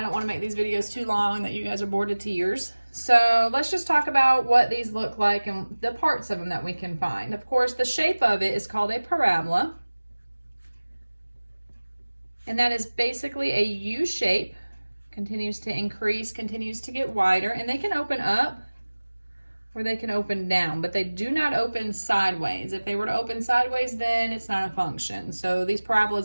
don't want to make these videos too long that you guys are bored to tears. So let's just talk about what these look like and the parts of them that we can find. Of course, the shape of it is called a parabola. And that is basically a U shape, continues to increase, continues to get wider, and they can open up or they can open down, but they do not open sideways. If they were to open sideways, then it's not a function. So these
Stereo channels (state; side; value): inverted; both; correlation -1.00